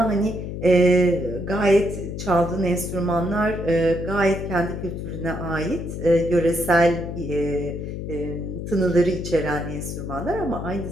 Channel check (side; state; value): left; noise; hum, 6 dB below the sound